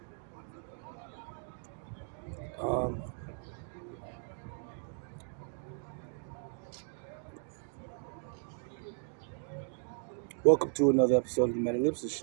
Um, Welcome to another episode of the Metalipsis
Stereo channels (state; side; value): silent; left; 54 dB below the other